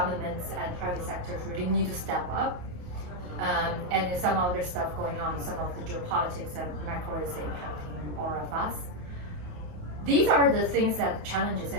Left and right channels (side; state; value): left; late; 28 ms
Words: and private sectors really need to step up. And there's some other stuff going on, some of the geopolitics and macro is impacting all of us. These are the things that challenges,